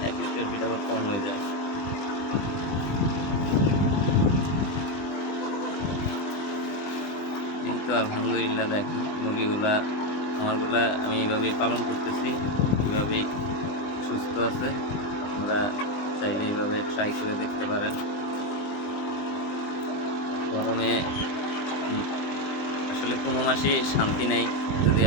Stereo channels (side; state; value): right; late; 20 ms